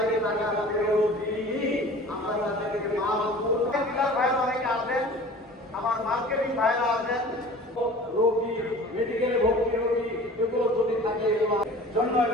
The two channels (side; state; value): both; normal; correlation 0.43